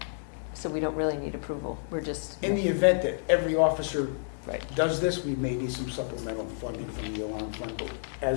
so we don't really need approval. We're just, In the event that every officer right. does this, we may need some supplemental funding from the alarm fund, but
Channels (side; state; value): right; silent; 57 dB below the other